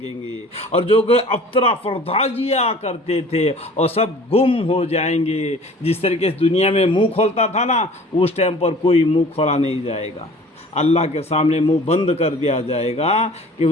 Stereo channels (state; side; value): normal; both; correlation 0.47